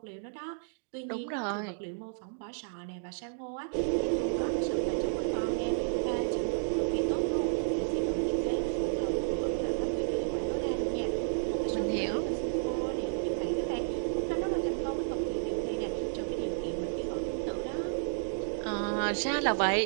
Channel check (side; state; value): left; silent; digital silence